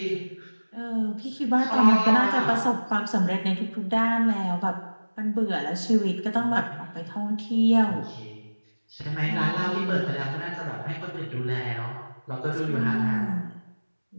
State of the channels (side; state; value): both; inverted; correlation -1.00